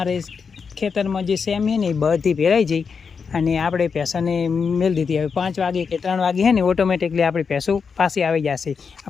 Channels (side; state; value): right; quieter; 5.7 dB